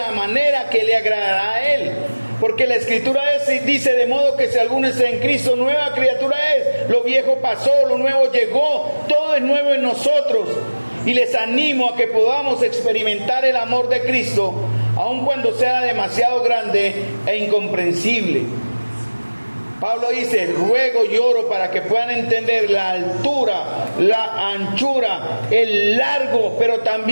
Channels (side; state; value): both; inverted; correlation -1.00